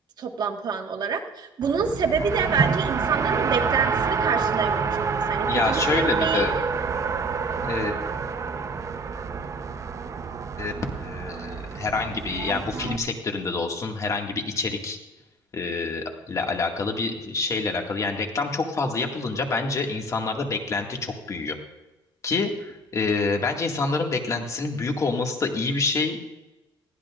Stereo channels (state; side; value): normal; both; correlation 0.45